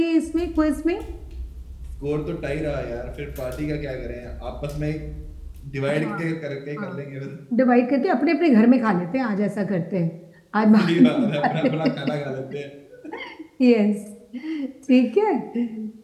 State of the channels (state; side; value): identical; both; correlation 1.00